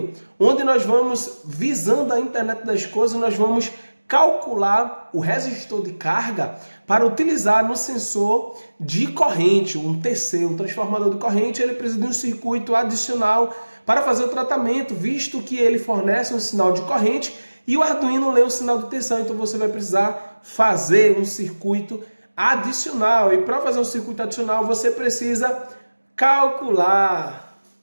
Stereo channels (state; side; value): inverted; both; correlation -1.00